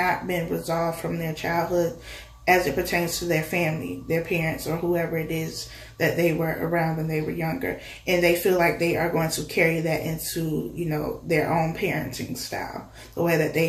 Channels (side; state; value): both; identical; correlation 1.00